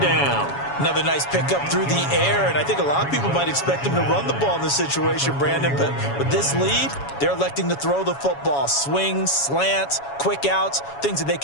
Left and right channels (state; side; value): late; right; 7.2 ms